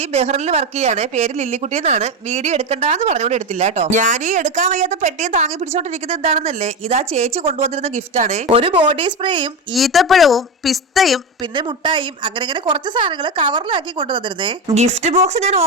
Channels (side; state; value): both; normal; correlation 0.17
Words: ബഹ്റിനിൽ വർക്ക് ചെയ്യാണ്, പേര് ലില്ലിക്കുട്ടി എന്നാണ്. വീഡിയോ എടുക്കണ്ടെന്ന് പറഞ്ഞുകൊണ്ട് എടുത്തില്ല കേട്ടോ. ഞാൻ ഈ എടുക്കാൻ വയ്യാത്ത പെട്ടിയും താങ്ങി പിടിച്ചോണ്ടിരിക്കുന്നത് എന്താണെന്നല്ലേ, ഇതാ ചേച്ചി കൊണ്ടുവന്നിരുന്ന ഗിഫ്റ്റ് ആണ്. ഒരു ബോഡി സ്പ്രേയും ഈത്തപ്പഴവും പിസ്തയും പിന്നെ മുട്ടായും അങ്ങനെ കുറച്ച് സാധനങ്ങൾ കവറിലാക്കി കൊണ്ടുവന്നിരുന്നേ. ഗിഫ്റ്റ് ബോക്സ് ഞാൻ